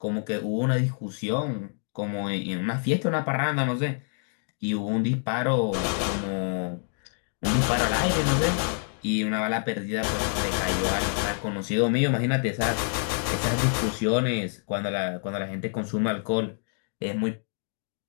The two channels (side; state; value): right; silent; 60 dB below the other